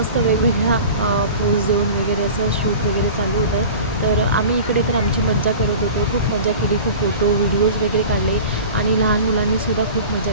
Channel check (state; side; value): inverted; both; correlation -0.38